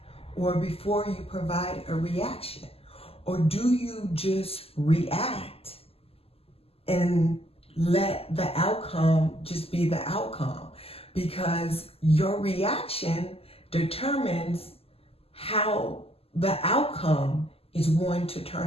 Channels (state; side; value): late; right; 0.28 ms